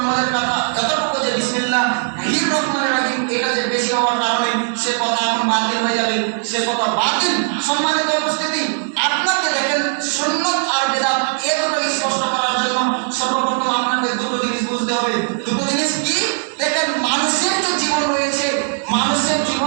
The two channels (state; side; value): silent; left; 67 dB below the other